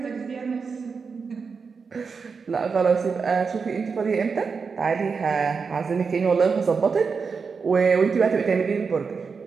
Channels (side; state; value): left; quieter; 5.3 dB